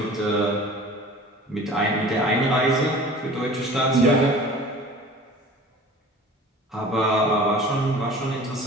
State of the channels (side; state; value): both; normal; correlation 0.42